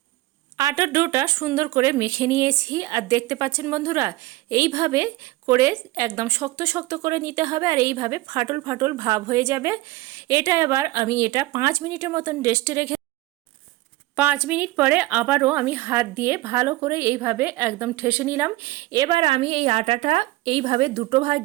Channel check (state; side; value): quieter; left; 19.0 dB